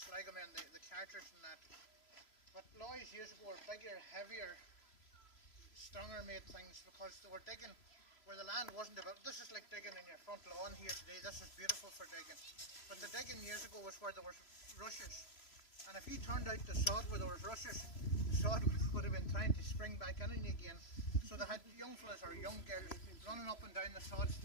the carters and that. But Loys years ago were bigger, heavier, stronger made things because they were digging where the land wasn't developed. This is like digging in your front lawn here today. This is beautiful for digging. But the digging years ago was where there was rushes. And if you turned out the sod where there was rushes, the sod would have been trying to spring back in again. So they had young fellas or young girls running up and down the sods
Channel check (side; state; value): right; late; 3.0 ms